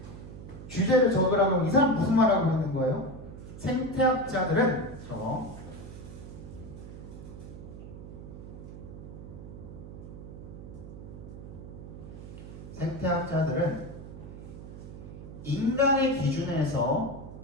주제를 적으라고 이 사람 무슨 말하고 있는 거예요? 생태학자들은 생태학자들은 인간의 기준에서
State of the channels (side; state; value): right; noise; hum, 12 dB below the sound